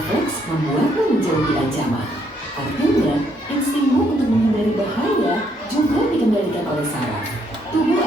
membuatmu menjauhi ancaman. Artinya, instingmu untuk menghindari bahaya juga dikendalikan oleh saraf. Tubuh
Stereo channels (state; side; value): normal; both; correlation 0.71